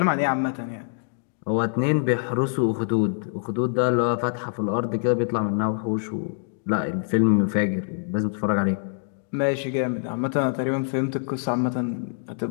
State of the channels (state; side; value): silent; right; digital silence